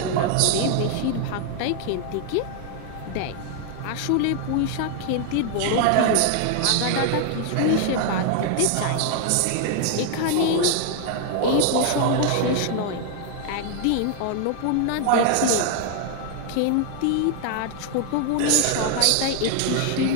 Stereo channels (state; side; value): different; both; correlation 0.00